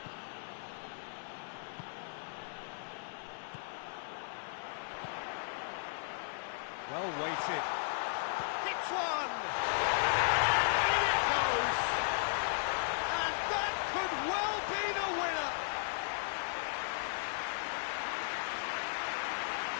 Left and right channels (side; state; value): right; silent; 54 dB below the other